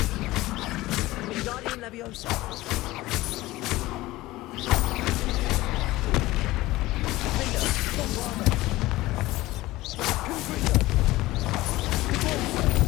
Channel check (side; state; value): right; quieter; 18.2 dB